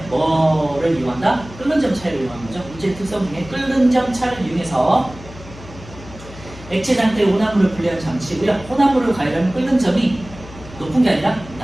뭐를 이용한다? 끓는 점 차이를 이용하는 거죠. 물질 특성 중에 끓는 점 차를 이용해서 액체 상태의 혼합물을 분리하는 장치고요. 혼합물을 가열하면 끓는 점이 높은 게 아니라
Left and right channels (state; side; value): noise; left; hum, 17 dB below the sound